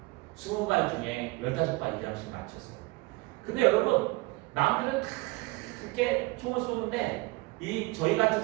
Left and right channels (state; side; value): quieter; left; 23.6 dB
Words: 20발 중에 15발 이상씩 맞췄어요. 근데 여러분 남들은 다 그렇게 총을 쏘는데 이 저희 같은